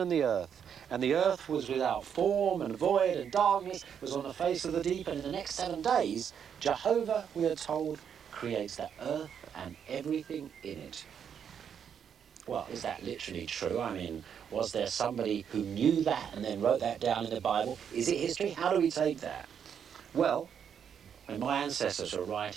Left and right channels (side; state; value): left; quieter; 8.0 dB